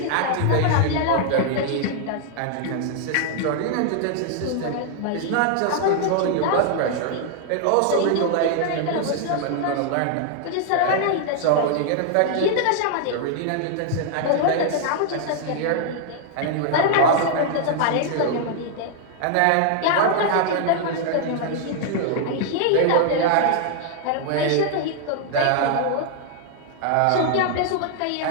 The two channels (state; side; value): different; both; correlation -0.01